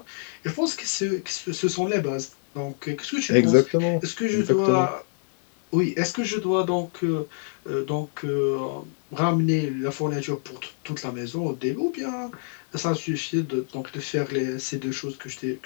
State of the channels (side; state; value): right; silent; digital silence